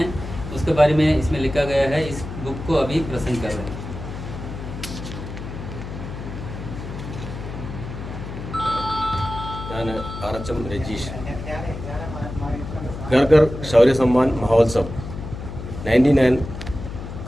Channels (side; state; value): left; noise; hum, 9 dB below the sound